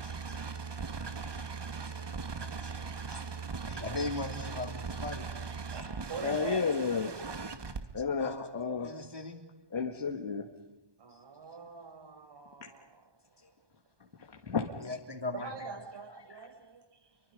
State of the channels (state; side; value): late; left; 1.2 ms